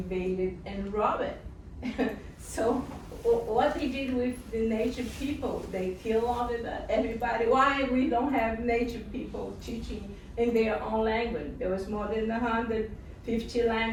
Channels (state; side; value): identical; both; correlation 1.00